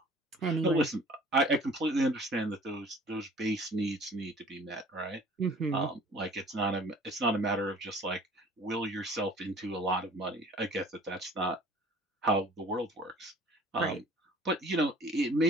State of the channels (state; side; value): normal; both; correlation 0.50